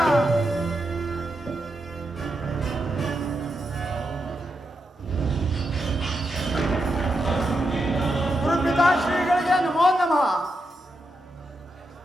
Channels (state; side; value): normal; both; correlation 0.85